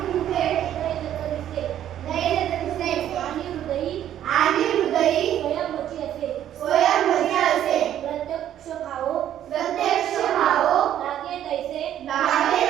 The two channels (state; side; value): quieter; left; 11.1 dB